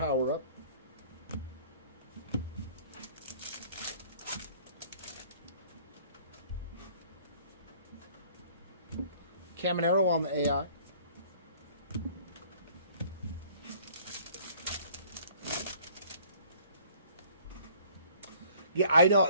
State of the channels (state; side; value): inverted; both; correlation -0.54